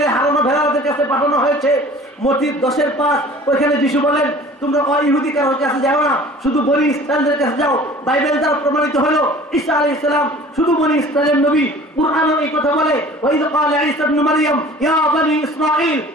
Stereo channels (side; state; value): both; normal; correlation 0.46